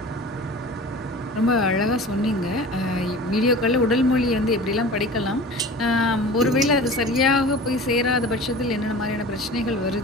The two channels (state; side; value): normal; both; correlation 0.38